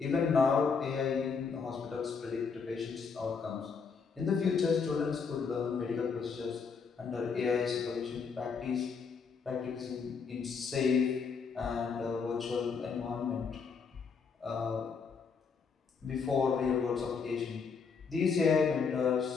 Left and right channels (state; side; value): quieter; right; 5.5 dB